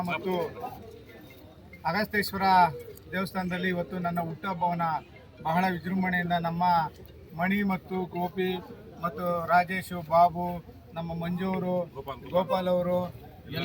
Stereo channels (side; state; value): both; identical; correlation 1.00